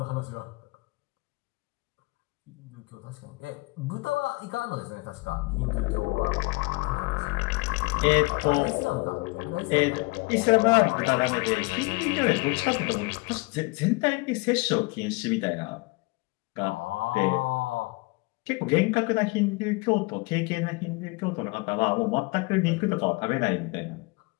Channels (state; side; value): quieter; right; 26.5 dB